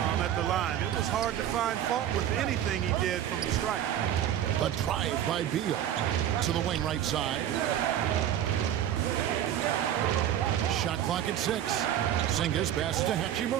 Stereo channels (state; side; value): quieter; left; 10.8 dB